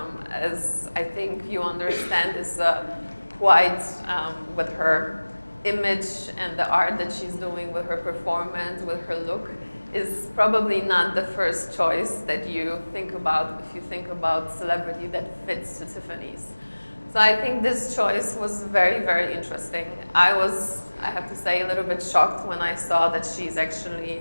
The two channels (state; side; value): inverted; both; correlation -1.00